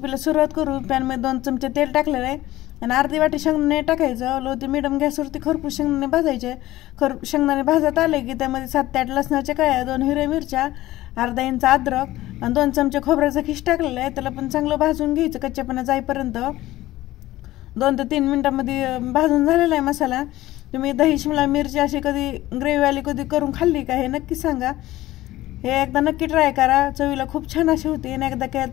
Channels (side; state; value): right; quieter; 16.2 dB